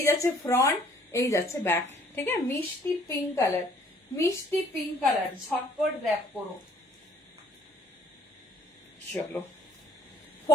যাচ্ছে ফ্রন্ট, এই যাচ্ছে ব্যাক, ঠিক আছে, মিষ্টি পিঙ্ক কালার, মিষ্টি পিঙ্ক কালার, ঝটপট ব্যাক করো। চলো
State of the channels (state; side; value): normal; both; correlation 0.59